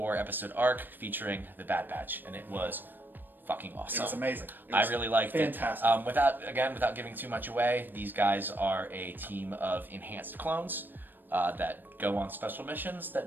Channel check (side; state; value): left; late; 0.093 ms